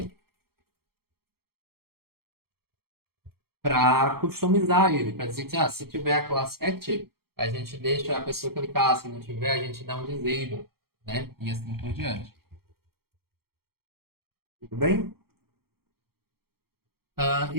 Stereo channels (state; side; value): late; left; 0.94 ms